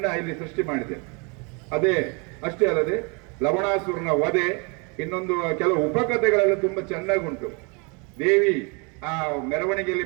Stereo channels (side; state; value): left; quieter; 32.4 dB